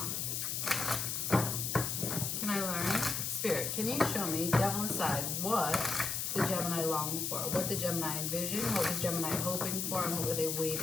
Can I learn? Spirit, can you show me, devil aside, what the Gemini longed for? What did Gemini envision? What was Gemini hoping for? And what were they waiting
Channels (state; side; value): noise; left; hiss, 1 dB below the sound